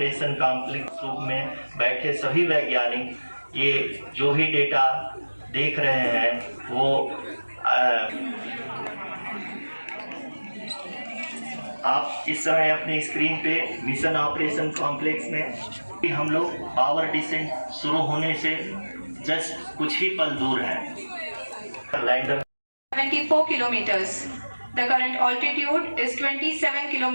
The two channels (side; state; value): both; inverted; correlation -1.00